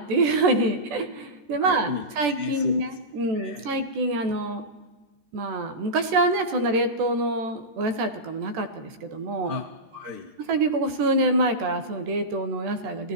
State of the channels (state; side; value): late; left; 14 ms